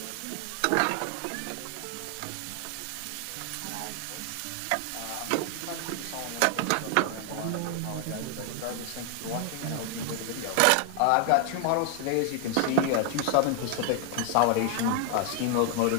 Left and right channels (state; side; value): different; both; correlation 0.00